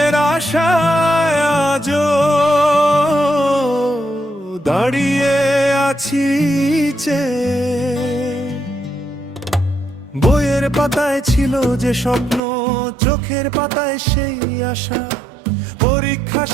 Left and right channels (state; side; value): drops out; left; at 12.4 s